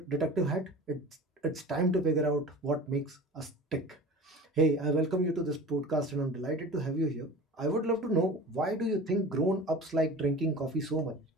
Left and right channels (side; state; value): both; normal; correlation 0.37